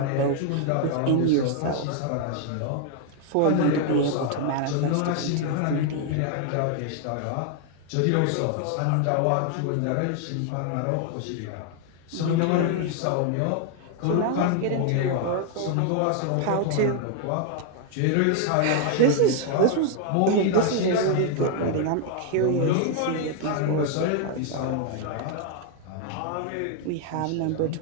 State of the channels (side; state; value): both; different; correlation 0.00